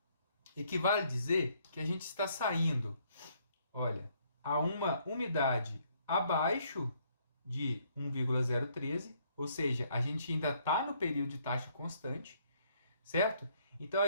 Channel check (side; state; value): both; inverted; correlation -0.68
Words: equivale dizer que a gente está saindo, olha, a uma umidade abaixo de 1,013, ou seja, a gente ainda está no período de taxa constante, certo? Então,